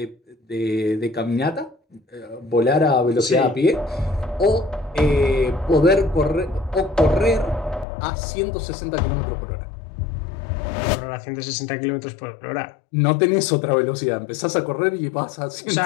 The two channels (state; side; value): drops out; right; at 7.9 s